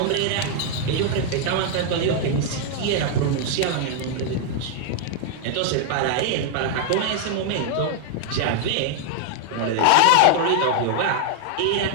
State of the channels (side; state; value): both; different; correlation 0.00